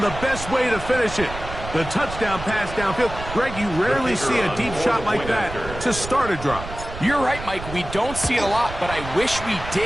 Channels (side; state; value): right; noise; rumble, 10 dB below the sound